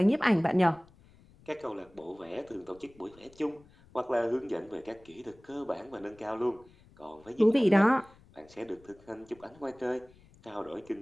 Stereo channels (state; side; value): noise; left; rumble, 26 dB below the sound